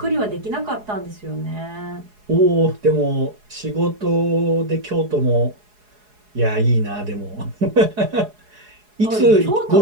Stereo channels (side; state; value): left; late; 4.8 ms